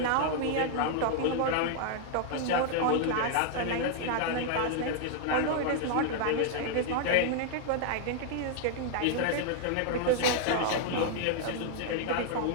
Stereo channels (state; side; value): different; both; correlation 0.00